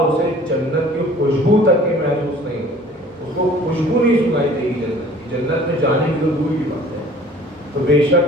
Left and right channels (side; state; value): both; normal; correlation 0.50